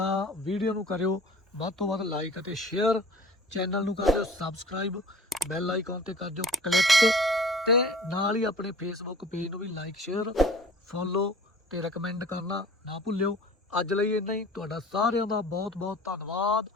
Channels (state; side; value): normal; both; correlation 0.45